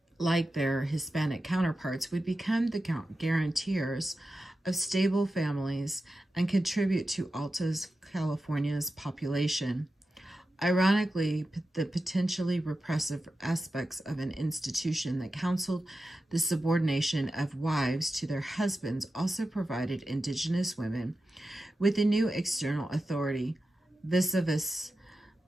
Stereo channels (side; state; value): both; normal; correlation 0.92